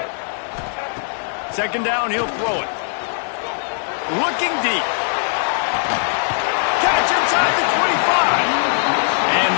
Second down, he'll throw it. Looking deep. Catch inside the 25. And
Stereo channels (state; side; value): silent; right; digital silence